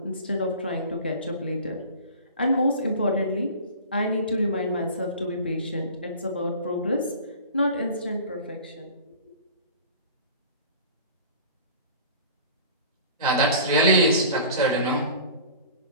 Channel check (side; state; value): both; inverted; correlation -0.41